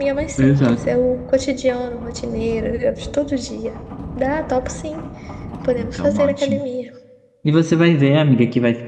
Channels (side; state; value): both; identical; correlation 1.00